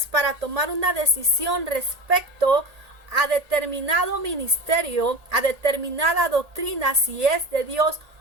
para tomar una decisión respecto a determinado ministerio, a determinada doctrina, si es de Dios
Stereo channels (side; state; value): left; late; 1.8 ms